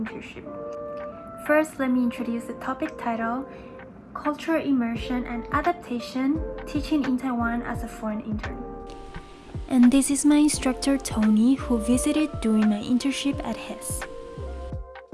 First, let me introduce the topic title, Cultural Immersion and Adaptation, Teaching in Taiwan as a Foreign Intern. And this is my instructor Tony, who visited during my internship at HES.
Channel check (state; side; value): identical; both; correlation 1.00